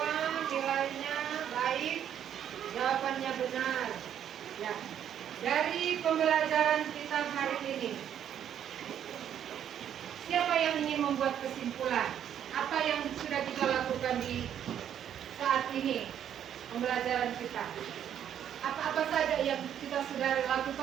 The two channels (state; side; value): quieter; left; 9.7 dB